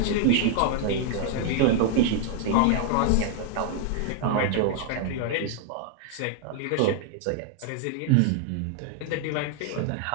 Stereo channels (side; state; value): both; different; correlation 0.00